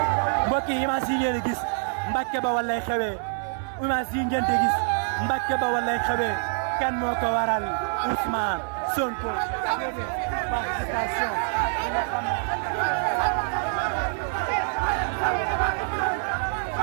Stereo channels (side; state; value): left; silent; digital silence